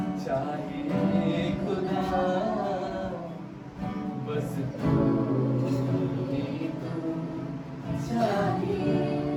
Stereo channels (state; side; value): identical; both; correlation 1.00